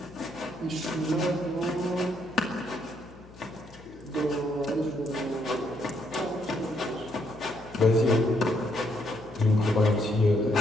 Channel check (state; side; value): noise; left; hum, 21 dB below the sound